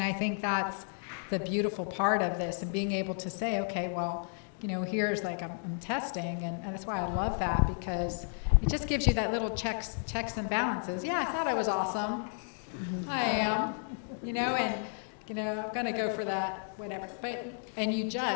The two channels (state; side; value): silent; right; 56 dB below the other